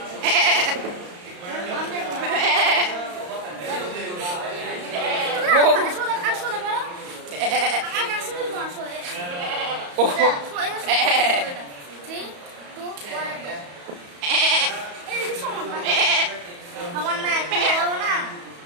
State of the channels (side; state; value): left; late; 34 ms